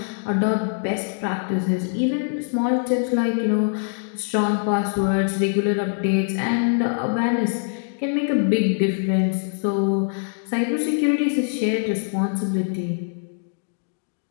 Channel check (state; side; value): silent; right; digital silence